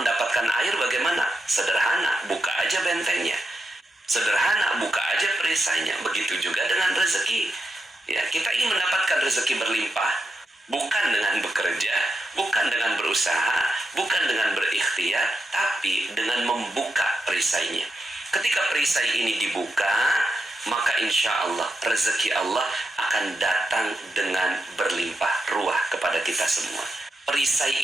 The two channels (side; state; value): both; normal; correlation 0.86